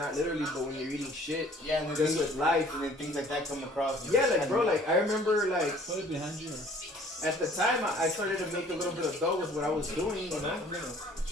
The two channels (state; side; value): normal; both; correlation 0.54